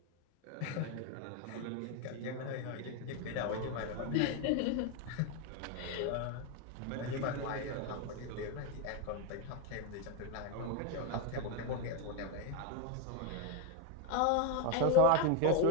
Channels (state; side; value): different; both; correlation 0.01